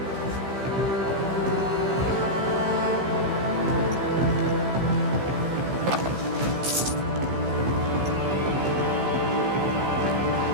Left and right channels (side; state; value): left; late; 15 ms